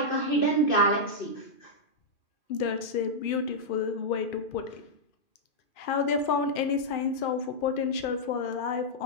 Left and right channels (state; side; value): late; right; 2.4 ms